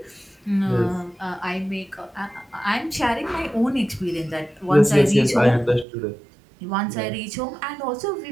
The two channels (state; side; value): drops out; left; at 5.9 s